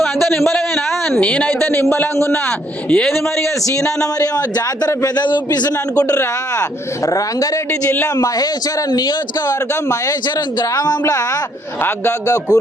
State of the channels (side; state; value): both; normal; correlation 0.68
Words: అంత నింబలమేనా? నేనైతే నింబలంగా ఉన్నా. ఏది మరిగా సీనాన్న మరి జాతర పెద్ద చూపిస్తున్నా అనుకుంటురా? రంగారెడ్డి జిల్లా మహేశ్వరం నియోజకవర్గం మహేశ్వరం గ్రామంలో అగ్గగ్గ